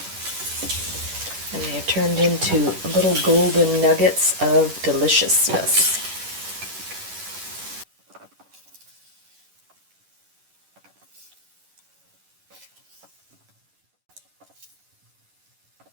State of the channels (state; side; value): late; left; 11 ms